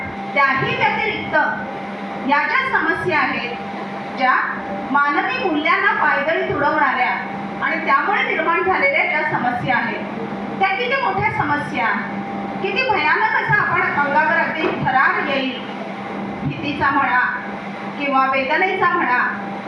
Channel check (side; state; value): both; identical; correlation 1.00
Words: त्याही व्यतिरिक्त या ज्या समस्या आहेत, ज्या मानवी मूल्यांना पायदळी तुडवणाऱ्या आणि त्यामुळे निर्माण झालेल्या ज्या समस्या आहेत, त्या किती मोठ्या समस्या, किती भयानक असा आपण अंगावर अगदी थरार येईल, भीतीचा म्हणा किंवा वेदनेचा म्हणा,